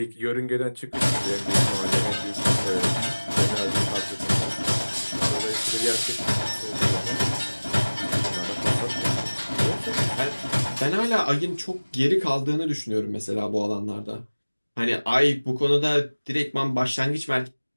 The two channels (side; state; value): both; inverted; correlation -1.00